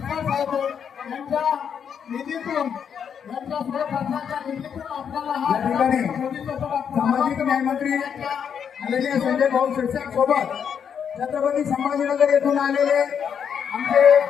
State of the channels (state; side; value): quieter; right; 7.6 dB